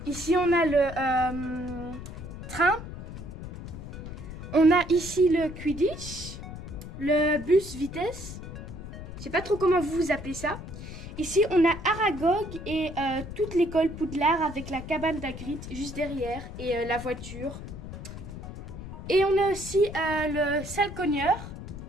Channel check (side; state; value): left; noise; rumble, 11 dB below the sound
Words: Ici, on a le train. On a ici le Quidditch, le bus vitesse. Je sais pas trop comment vous appelez ça. Ici, on a Aragog et toute l'école Poudlard avec la cabane d'Hagrid juste derrière et la voiture. Et on a aussi le salcogneur,